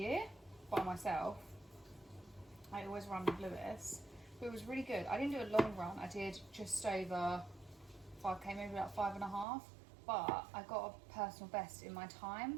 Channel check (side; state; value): left; drops out; at 9.5 s